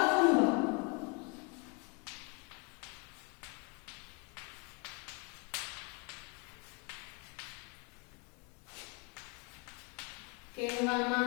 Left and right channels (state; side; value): quieter; right; 31.5 dB